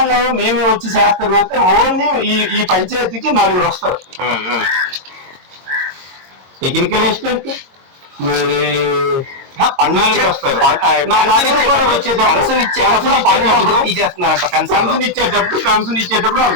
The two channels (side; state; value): left; late; 22 ms